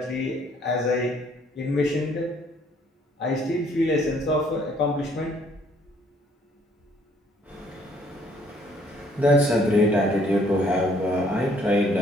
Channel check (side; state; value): both; normal; correlation 0.63